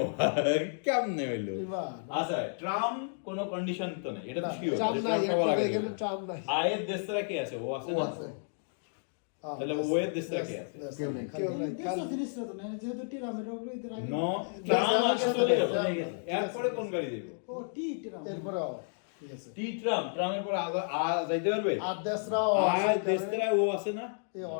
কেমনে হইলো? Prima, আচ্ছা ট্রাম কোনো কন্ডিশন তো নেই, এটা তো না, শিওর, Trump নাই, এখানে Trump নাই। আয়ের দেশরা কে আছে? ও আছে না? A. তাহলে ও এর দেশটা কে আছে? Destra. কেউ নেই। কেউ নাই, দেশটা জিনিসটা তো নাই, যেহেতু টিরামের গলিতে রাখি। নো ট্রাম আগে চলে গেল, ট্রাম। এরপরে কোন গাড়ি দেবে? ও টি টিরাম। এরপরে ও, ঠিক আছে। টি ট্রাম, ট্রামের পরে আ যাইতে পারবে? আর destra ও আ আছে, দেশরা ও আছে না, এই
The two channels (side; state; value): right; silent; digital silence